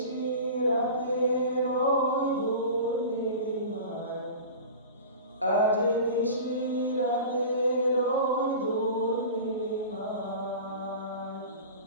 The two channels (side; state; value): both; inverted; correlation -0.35